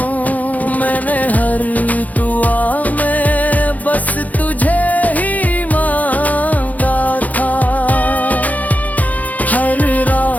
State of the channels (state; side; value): late; right; 0.077 ms